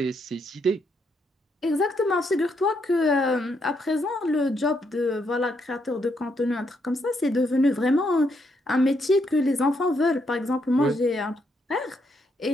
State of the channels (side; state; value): both; normal; correlation 0.76